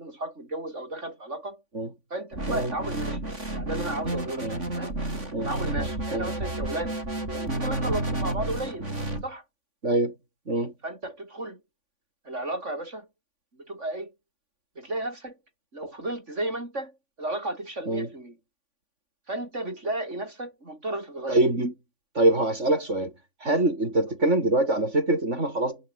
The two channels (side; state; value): left; late; 3.5 ms